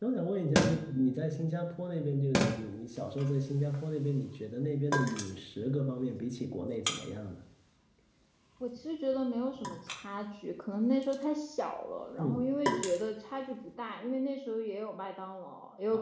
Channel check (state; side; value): identical; both; correlation 1.00